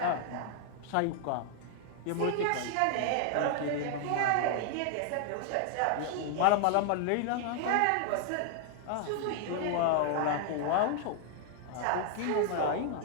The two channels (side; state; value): both; different; correlation 0.00